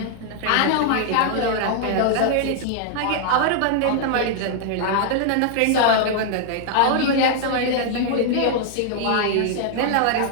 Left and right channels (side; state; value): both; different; correlation 0.00